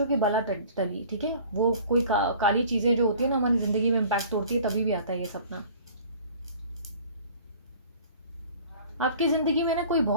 कि बला टली, ठीक है। वो कोई काली चीज़ें जो होती है ना हमारी ज़िंदगी में इम्पैक्ट तोड़ती है, तभी भी आता है ये सपना। आपकी ज़िंदगी में ना कोई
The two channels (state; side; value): inverted; both; correlation -0.47